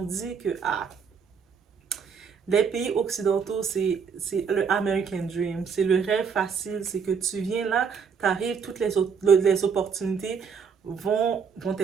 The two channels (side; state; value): left; quieter; 6.3 dB